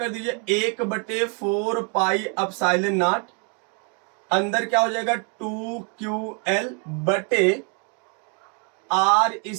दीजिए 1/4 पाई एप्सिलॉन नॉट, अंदर क्या हो जाएगा 2QL बटे R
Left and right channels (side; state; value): left; quieter; 38.0 dB